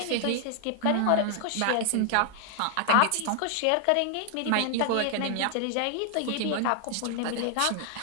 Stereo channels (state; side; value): different; both; correlation 0.00